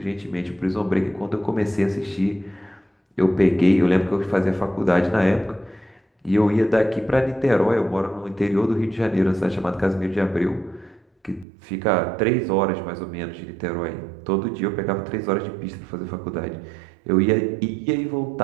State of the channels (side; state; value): left; drops out; at 11.5 s